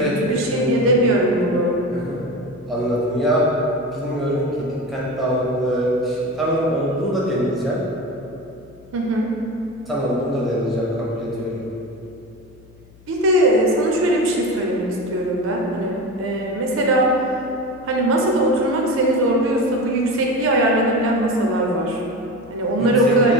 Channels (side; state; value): left; noise; hum, 25 dB below the sound